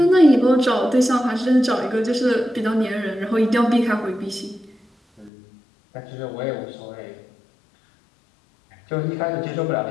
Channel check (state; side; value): drops out; right; at 5.3 s